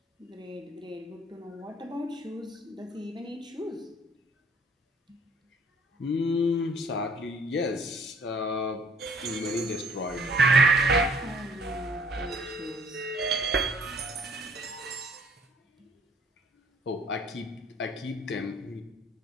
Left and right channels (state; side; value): normal; both; correlation 0.58